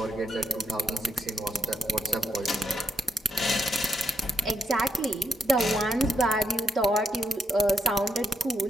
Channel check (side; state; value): both; normal; correlation 0.79